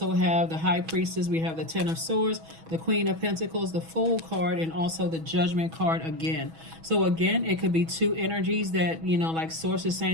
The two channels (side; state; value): left; late; 6.2 ms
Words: have the High Priestess. We have the 10 of Swords, the Queen of Pentacles, the Fool card, and also the Judgment card again. So again, it could be 2 energies that, like Source is